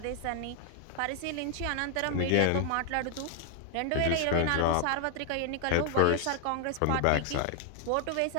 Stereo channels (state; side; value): different; both; correlation 0.00